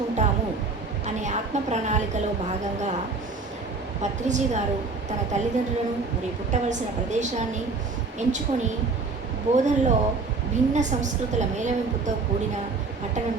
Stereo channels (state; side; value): quieter; left; 4.0 dB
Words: అనే ఆత్మ ప్రణాళికలో భాగంగా పత్రిజీ గారు తన తల్లిదండ్రులను మరియు పుట్టవలసిన ప్రదేశాన్ని ఎంచుకొని బోధనలో భిన్న సంస్కృతుల మేళవింపుతో కూడిన